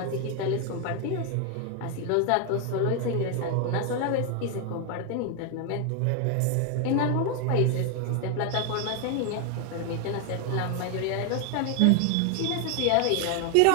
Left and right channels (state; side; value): different; both; correlation 0.01